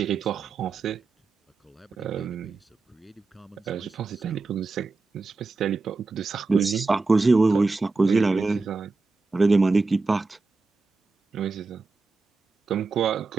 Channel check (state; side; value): quieter; left; 3.9 dB